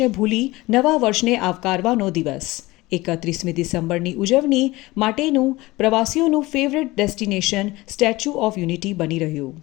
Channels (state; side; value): quieter; right; 20.2 dB